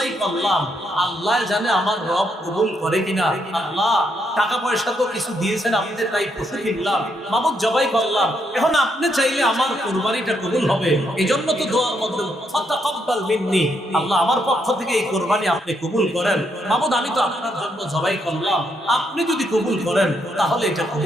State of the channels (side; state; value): both; normal; correlation 0.77